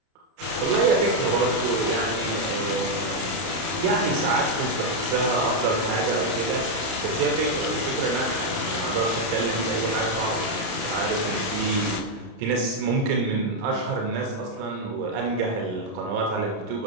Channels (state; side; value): late; left; 30 ms